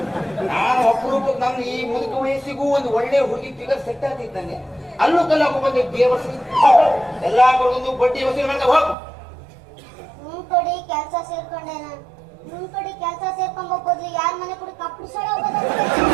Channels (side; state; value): left; drops out; at 9.0 s